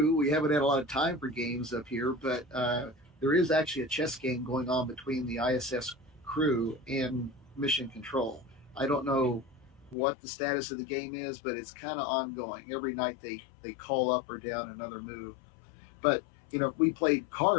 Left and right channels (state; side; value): drops out; right; at 10.0 s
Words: We haven't had a lot of time for games up here, but there is actually a chess game going on between the ISS crew and Mission Control. I don't know what the status of the game is, but it's kind of ongoing. Every night they call up or down another move. But we played